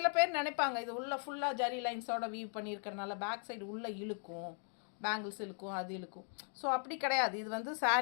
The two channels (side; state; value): right; silent; 52 dB below the other